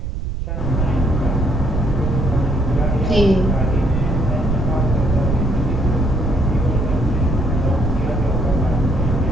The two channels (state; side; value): noise; right; rumble, 2 dB below the sound